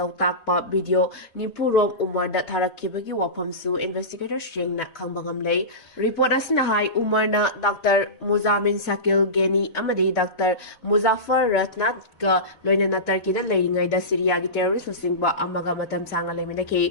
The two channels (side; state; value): right; late; 4.0 ms